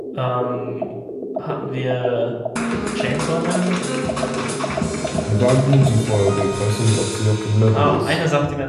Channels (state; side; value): identical; both; correlation 1.00